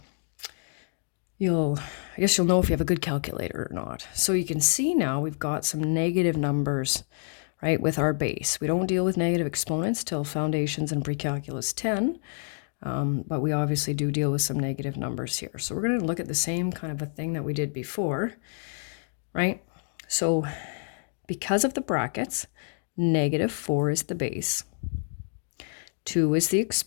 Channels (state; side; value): silent; right; digital silence